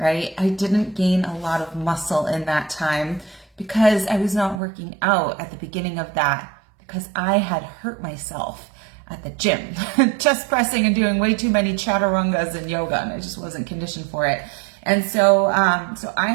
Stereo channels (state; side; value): drops out; left; at 4.6 s